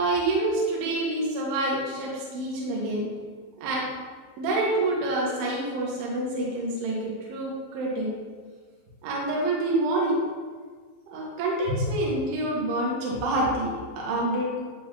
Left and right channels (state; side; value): late; left; 16 ms